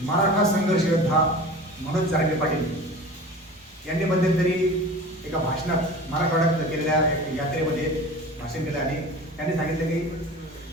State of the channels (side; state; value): both; normal; correlation 0.37